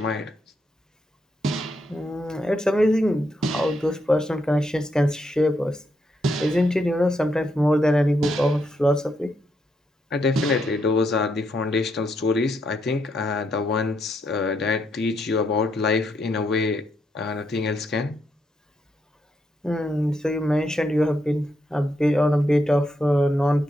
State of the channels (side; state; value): both; normal; correlation 0.79